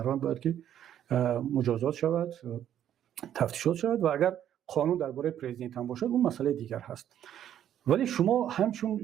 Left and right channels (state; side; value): quieter; left; 10.6 dB